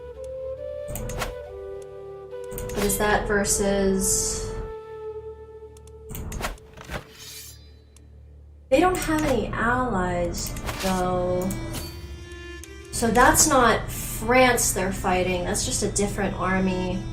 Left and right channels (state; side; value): identical; both; correlation 1.00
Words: What is that versus... They don't have any allies, though. So that's not France they're fighting, that's just a different army.